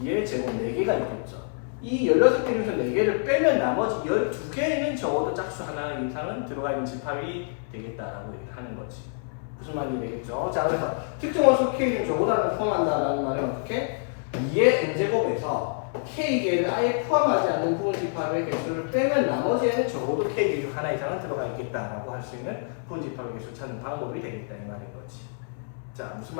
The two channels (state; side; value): silent; right; 60 dB below the other